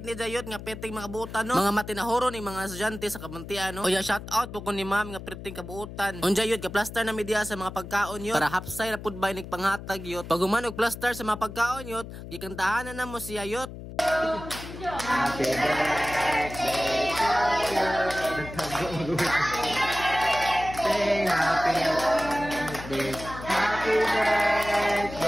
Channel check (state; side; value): noise; left; hum, 12 dB below the sound